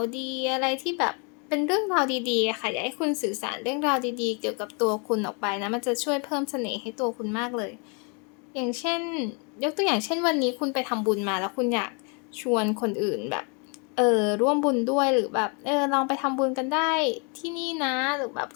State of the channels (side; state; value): right; quieter; 35.0 dB